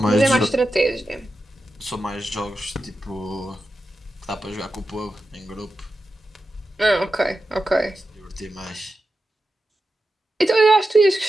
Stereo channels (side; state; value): both; normal; correlation 0.91